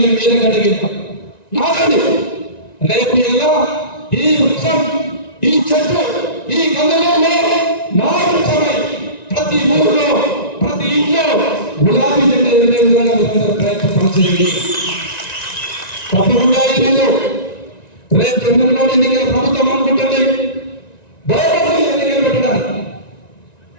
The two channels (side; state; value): right; late; 1.9 ms